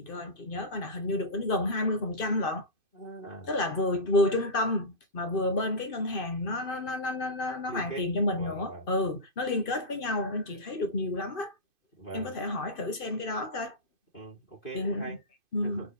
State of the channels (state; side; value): late; right; 2.5 ms